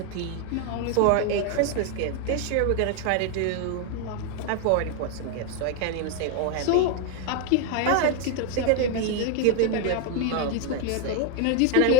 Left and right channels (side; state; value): both; different; correlation 0.01